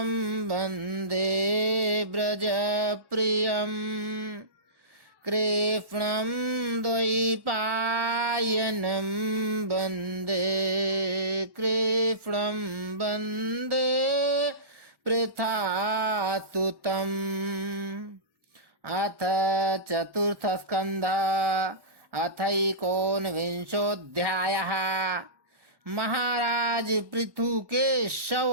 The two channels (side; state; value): left; late; 1.1 ms